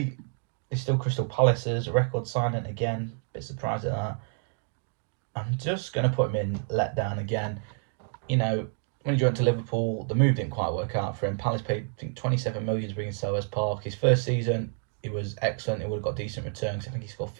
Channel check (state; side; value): silent; left; 55 dB below the other